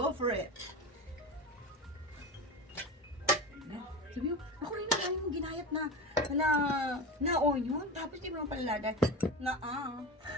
for it. Sabi mo, ako rin na yung ginayat na onion. Tapos di mo naman palalagay na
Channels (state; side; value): normal; both; correlation 0.25